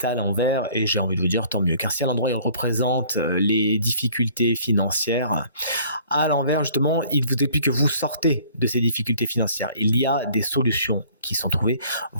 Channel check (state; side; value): inverted; both; correlation -0.55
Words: à l'envers et j'ai envie de vous dire tant mieux. Car si à l'endroit il représente les difficultés financières, à l'envers justement, il vous explique que vous sortez de ces difficultés financières. Il y a des solutions qui sont trouvées,